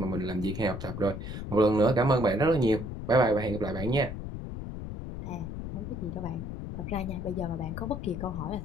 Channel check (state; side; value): noise; left; rumble, 7 dB below the sound